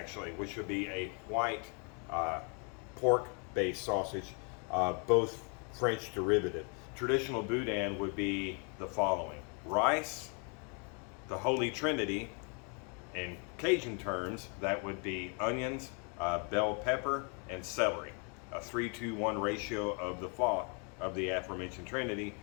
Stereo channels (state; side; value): quieter; right; 36.9 dB